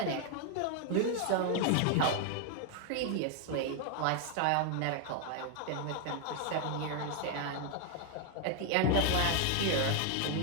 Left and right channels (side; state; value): both; different; correlation 0.00